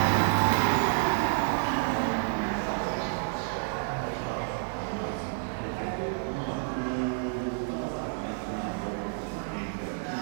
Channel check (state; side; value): silent; left; 58 dB below the other